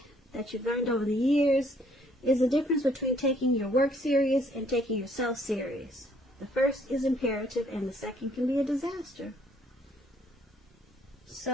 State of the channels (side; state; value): both; normal; correlation 0.64